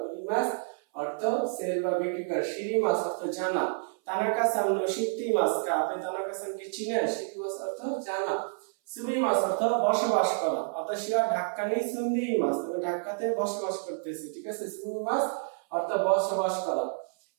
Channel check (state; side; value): silent; left; 58 dB below the other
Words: উরিমাস অর্থ সেল বা বিক্রি করা। শিরিমাস অর্থ জানা। তানাকা-সান নো শিত্তিমাস কা, আপনি তানাকা-সানকে চিনেন। শিত্তিমাস অর্থ জানা। সুমিমাস অর্থ বসবাস করা। আতাশিয়া ঢাকা নি সুন্দিমাস, আমি ঢাকাতে বসবাস করতেছি। ঠিক আছে। সুমিমাস অর্থ বসবাস করা।